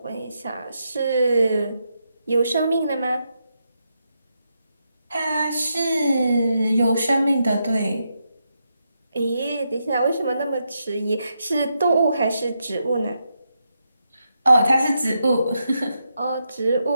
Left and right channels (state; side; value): inverted; both; correlation -0.83